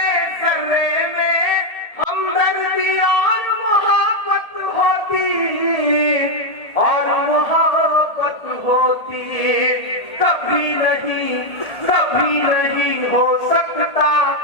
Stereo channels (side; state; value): right; late; 1.8 ms